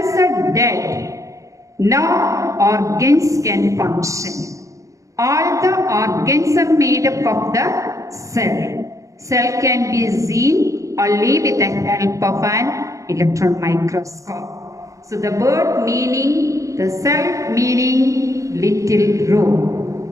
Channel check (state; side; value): late; left; 0.15 ms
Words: are dead, no organs can function. All the organs are made up of the cell. Cell can be seen only with the help of an electron microscope. So the word meaning, the cell meaning little room.